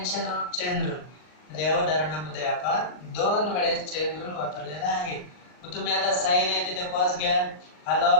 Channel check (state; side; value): late; right; 39 ms